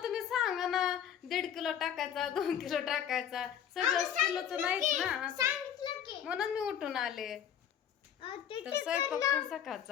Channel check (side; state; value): right; quieter; 9.2 dB